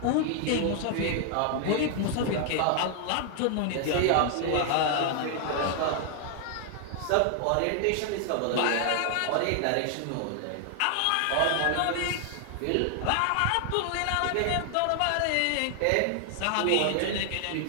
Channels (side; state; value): both; different; correlation 0.00